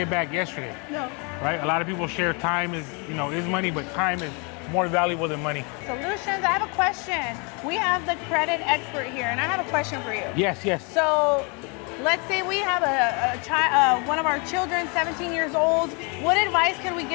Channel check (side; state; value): right; quieter; 33.1 dB